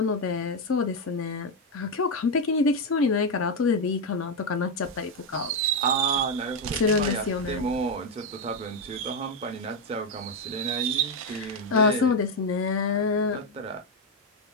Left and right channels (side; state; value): both; normal; correlation 0.05